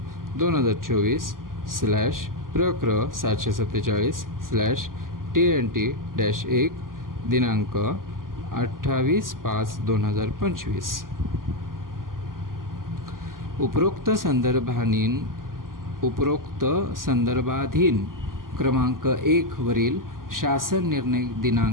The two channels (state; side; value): late; left; 0.91 ms